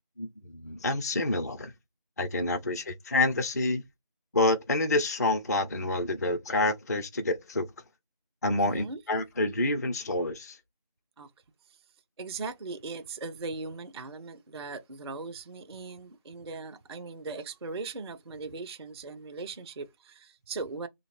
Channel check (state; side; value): inverted; both; correlation -0.32